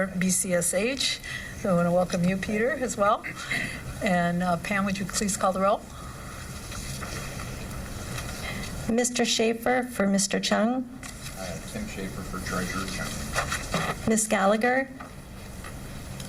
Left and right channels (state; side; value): identical; both; correlation 1.00